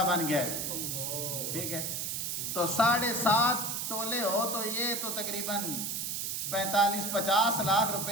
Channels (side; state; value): right; noise; hiss, 2 dB below the sound